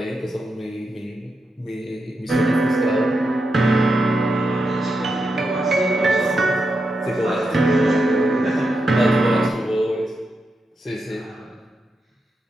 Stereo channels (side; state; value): both; normal; correlation 0.86